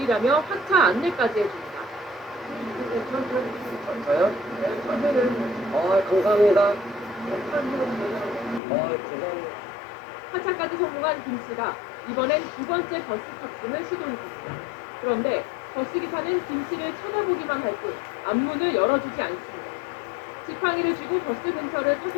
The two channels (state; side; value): drops out; right; at 8.6 s